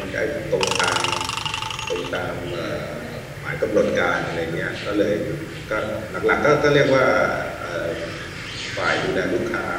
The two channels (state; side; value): identical; both; correlation 1.00